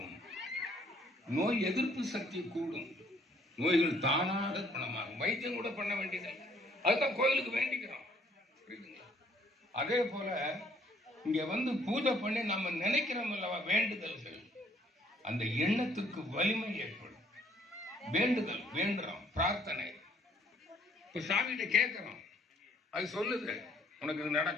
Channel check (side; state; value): both; normal; correlation 0.63